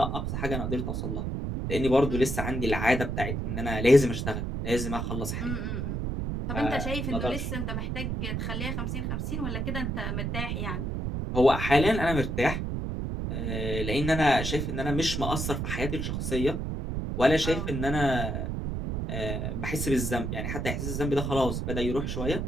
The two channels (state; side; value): noise; right; rumble, 2 dB below the sound